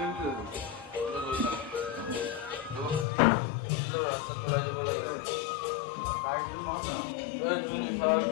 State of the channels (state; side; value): drops out; right; at 3.1 s